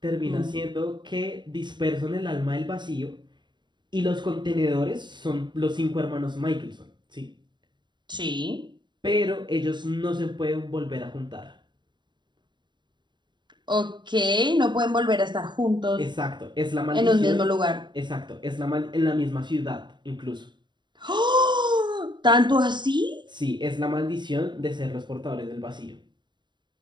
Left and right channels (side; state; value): left; late; 0.22 ms